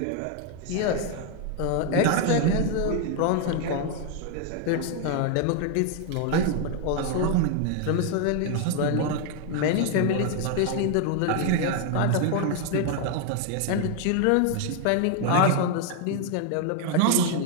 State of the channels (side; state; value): both; different; correlation 0.00